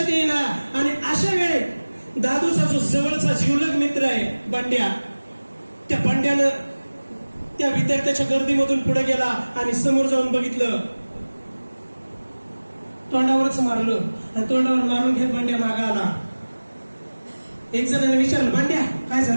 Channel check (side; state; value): both; inverted; correlation -1.00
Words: येईना. आणि अशा वेळे दादूचा जो जवळचा जीवलग मित्र आहे बंड्या, त्या बंड्यानं त्या विद्यार्थ्याच्या गर्दीमधून पुढे गेला आणि समोर जाऊन बघितलं. तोंडावरच मारलं आणि तोंडावर मारून घेत बंड्या मागा आला. एक जणांनी विचारलं, बंड्या काय